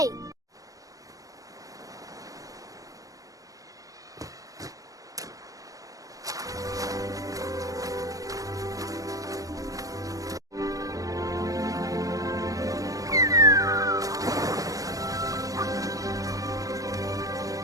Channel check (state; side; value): late; left; 0.17 ms